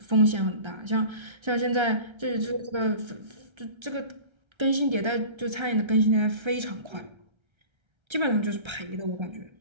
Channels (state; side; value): late; left; 1.3 ms